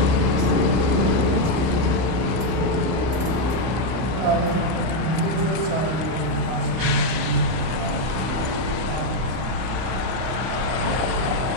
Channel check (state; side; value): late; left; 31 ms